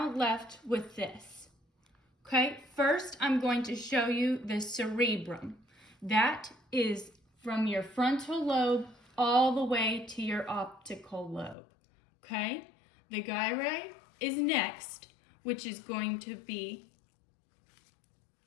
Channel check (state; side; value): drops out; right; at 11.6 s